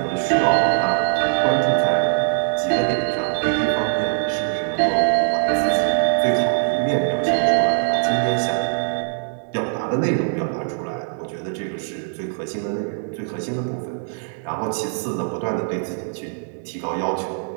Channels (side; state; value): left; silent; 64 dB below the other